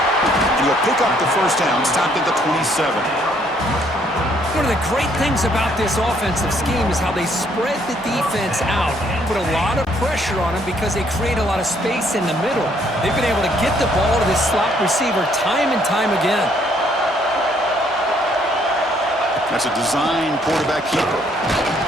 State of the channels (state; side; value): normal; both; correlation 0.66